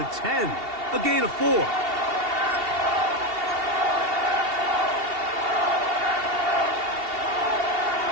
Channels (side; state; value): left; late; 2.8 ms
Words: 10. A gain of 4.